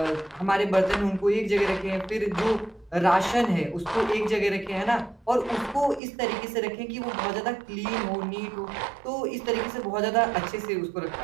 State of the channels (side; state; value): left; drops out; at 6.0 s